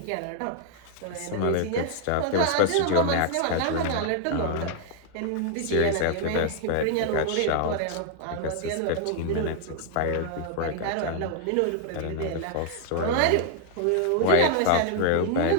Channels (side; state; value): both; different; correlation 0.00